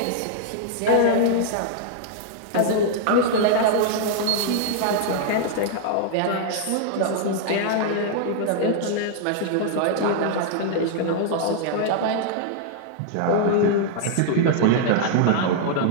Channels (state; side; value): different; both; correlation -0.01